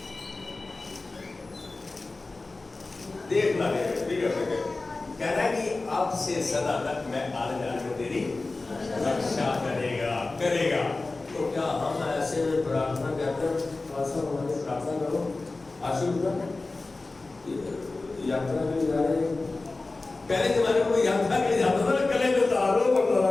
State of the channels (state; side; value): quieter; right; 3.4 dB